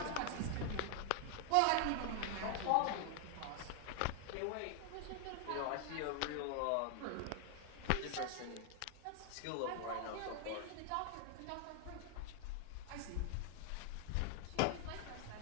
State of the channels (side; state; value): both; different; correlation 0.00